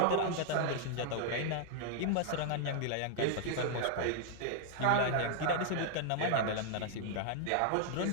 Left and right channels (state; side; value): different; both; correlation -0.01